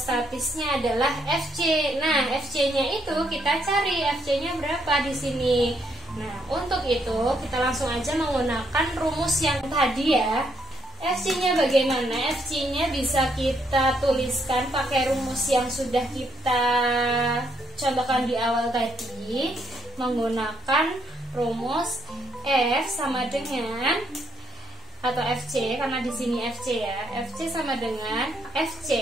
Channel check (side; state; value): both; normal; correlation 0.74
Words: adalah FC. Nah, FC-nya itu kita cari FC-nya berapa di sini. Nah, untuk itu kita langsung aja menggunakan rumus yang tadi ya. FC-nya bagaimana? FC-nya bisa kita tuliskan pakai rumus yang sudah kita contohkan di awal tadi, menggunakan rumus F sama dengan atau FC karena di sini FC ya. FC sama dengan